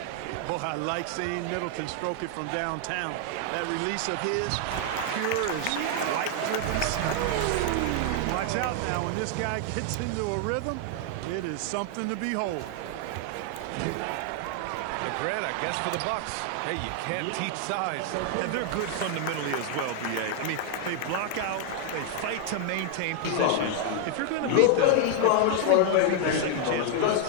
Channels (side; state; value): both; different; correlation 0.00